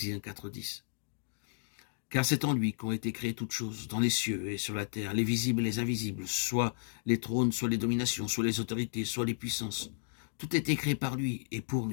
4, 10. Car c'est en lui qu'ont été créées toutes choses, dans les cieux et sur la terre, les visibles et les invisibles, soit les trônes, soit les dominations, soit les autorités, soit les puissances. Tout a été créé par lui et pour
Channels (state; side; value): silent; right; digital silence